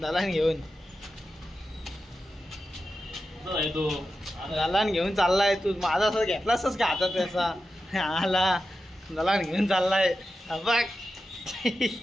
दलाल घेऊन दलाल घेऊन चाललाय तू। माझा असं घेतला असंच का हातात त्याचा, आला दलाल घेऊन चाललाय बघ।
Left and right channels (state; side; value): normal; both; correlation 0.91